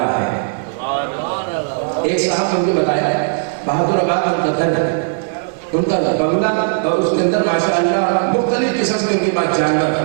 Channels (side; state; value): left; silent; 56 dB below the other